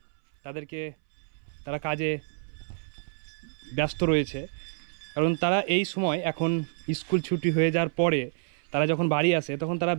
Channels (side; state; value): left; silent; 59 dB below the other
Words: তারা কাজে ব্যস্ত রয়েছে। কারণ তারা এই সময় এখন স্কুল ছুটি হয়ে যাওয়ার পরে তারা যখন বাড়ি আসে তখন তারা